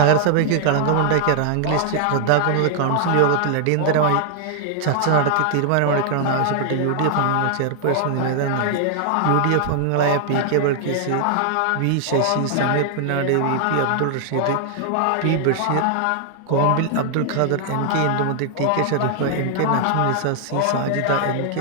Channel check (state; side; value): different; both; correlation 0.00